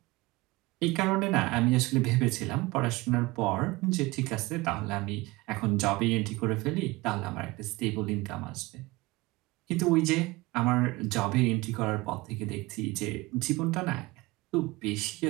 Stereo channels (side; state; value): left; quieter; 21.8 dB